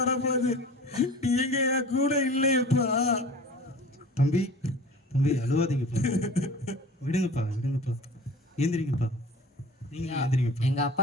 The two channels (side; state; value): both; normal; correlation 0.41